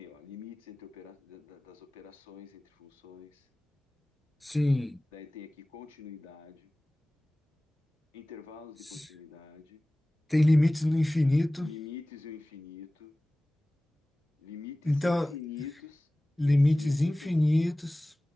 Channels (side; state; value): both; normal; correlation 0.98